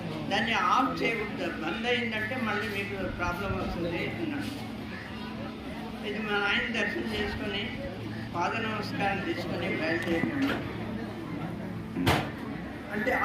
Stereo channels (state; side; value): identical; both; correlation 1.00